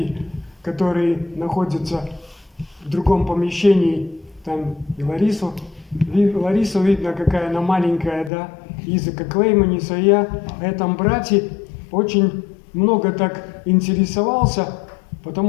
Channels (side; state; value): right; drops out; at 8.3 s